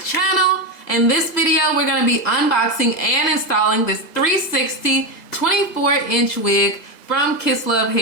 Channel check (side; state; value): right; late; 1.9 ms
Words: In this video, we're going to be unboxing and installing this 360 24-inch wig from Kiss Love